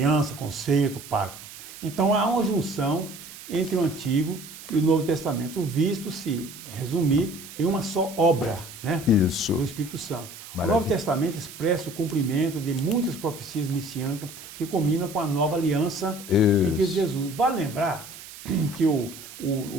conceito, pacto. Então, há uma junção entre o Antigo e o Novo Testamento, visto se resumir em uma só obra, né? Isso. Do Espírito Santo. Maravilha. O Novo Testamento expressa o cumprimento de muitas profecias messiânicas que combinam com a nova aliança em Cristo Jesus. Vale lembrar que o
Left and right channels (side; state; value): right; noise; hiss, 15 dB below the sound